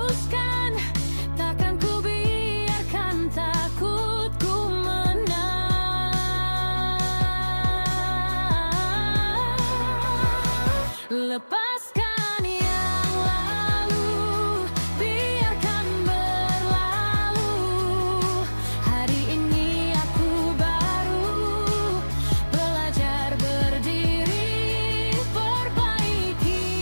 takkan ku biarkan takutku menang. Lepaskan yang lalu, biarkan berlalu. Hari ini aku baru belajar berdiri, perbaiki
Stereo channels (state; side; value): inverted; both; correlation -1.00